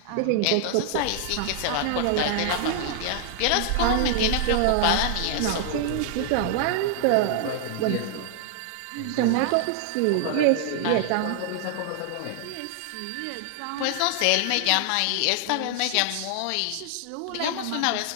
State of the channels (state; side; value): different; both; correlation 0.00